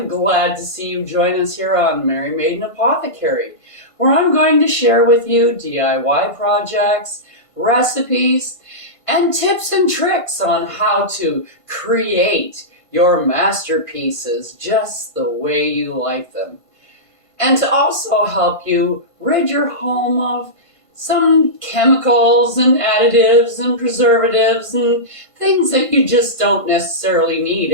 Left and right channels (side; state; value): right; late; 1.5 ms